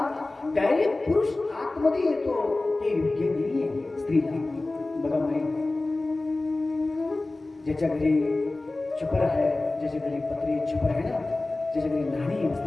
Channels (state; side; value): quieter; right; 3.0 dB